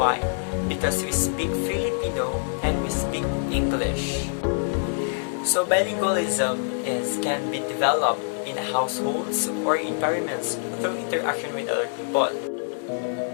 Because we speak Filipino and we speak English. So bilingualism can be developed in households or environments through interaction with other people.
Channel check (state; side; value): silent; right; digital silence